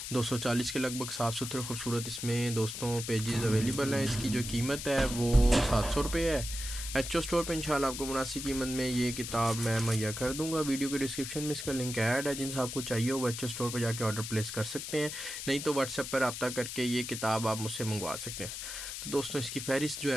کے لگ بھگ صاف ستھرے خوبصورت اس میں دوستوں پیجز اویلیبل ہیں۔ اس کی جو قیمت ہے وہ 700 روپے ہے۔ ایچ او اسٹور پہ انشاءاللہ آپ کو مناسب قیمت میں یہ کتاب میں مہیا کر دوں گا۔ ویڈیو کے ڈسکرپشن میں اس کا لنک ایڈ ہے، جن سے آپ کو چاہیے وہ ایچ او اسٹور پہ جا کے آرڈر پلیس کر سکتے ہیں، نہیں تو واٹس ایپ پر رابطہ کر کے یہ کتاب آپ مجھ سے منگوا سکتے ہیں۔ تو دوستوں اس کی فہرست جو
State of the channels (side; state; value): left; noise; hiss, 7 dB below the sound